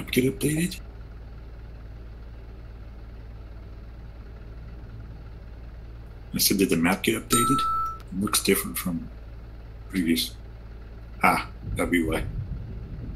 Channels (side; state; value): both; identical; correlation 1.00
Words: get updated? I said, did the map get updated? It looks different from previous. Ah, that'd be why.